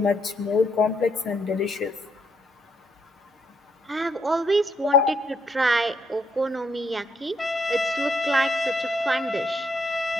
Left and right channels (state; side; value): normal; both; correlation 0.74